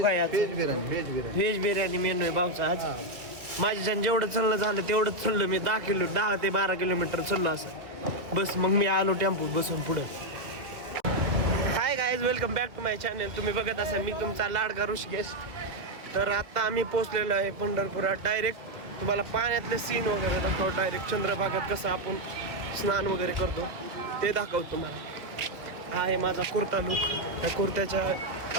काय आज? व्हेज बिर्याणी मेनू आहे भाऊचा आज. माझ्याच्यानं जेवढं चाललं झालं तेवढंच चाललं मी. 10 ते 12 किलोमीटर चाललो असं. बस मग मी आलो टेम्पो बसून पुढं. Hi guys, welcome back to my channel. तुम्ही बघत असाल मी तुमचा लाडका ऋषिकेश. तर आता आम्ही पोहोचलेलो आहे पंढरपुरात. डायरेक्ट तुम्हाला पाण्यातले सीन वगैरे दाखवतो. डायरेक्ट चंद्रभागात कसं आपण स्नान वगैरे करतो ते दाखवतो तुम्हाला. हा आहे माझा कुर्ता लुक. त्या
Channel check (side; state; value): left; late; 2.2 ms